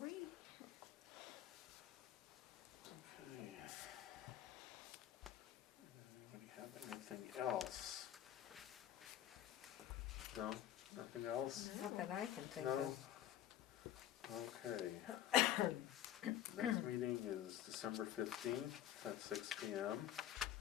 right. Okay. Anybody have anything else? No, nothing else? Not that I can think No? of. Okay. Next meeting is December 15th at 6 PM.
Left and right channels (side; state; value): right; quieter; 11.8 dB